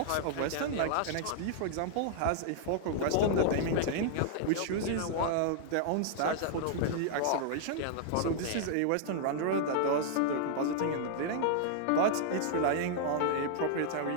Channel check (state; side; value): different; both; correlation -0.01